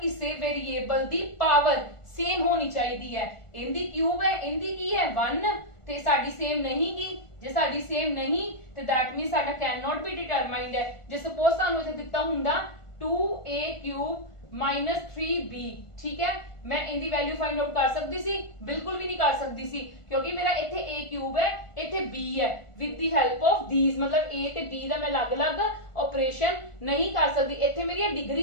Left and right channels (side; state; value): right; late; 1.4 ms